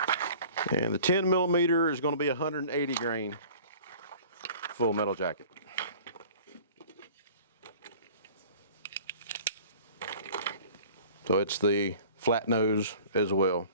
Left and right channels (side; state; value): both; inverted; correlation -0.46